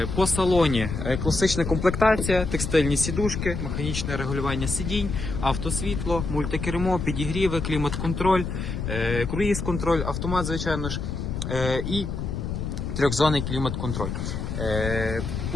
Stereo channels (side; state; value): left; noise; rumble, 4 dB below the sound